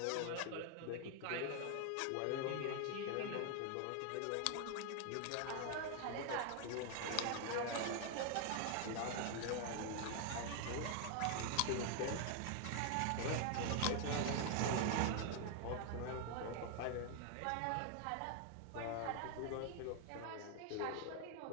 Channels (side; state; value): both; different; correlation 0.00